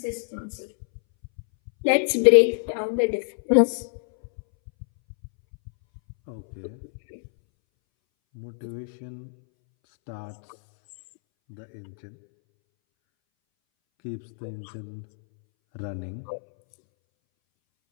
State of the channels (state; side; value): silent; right; 61 dB below the other